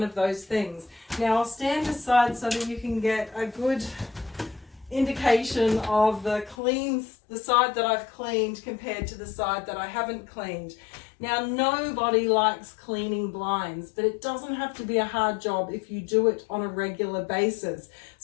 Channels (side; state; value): right; drops out; at 6.6 s